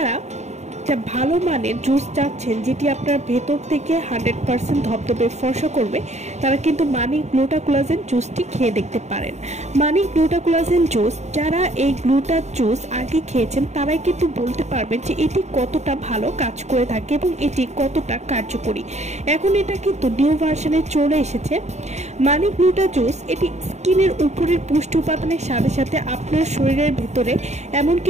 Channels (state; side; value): late; left; 0.33 ms